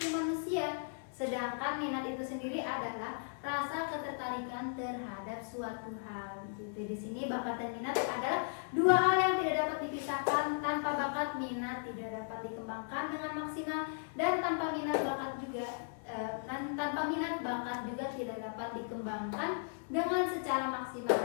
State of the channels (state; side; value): silent; right; digital silence